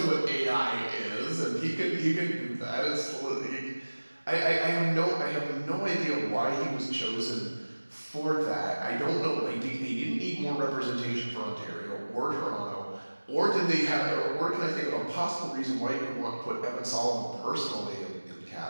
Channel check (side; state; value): both; inverted; correlation -1.00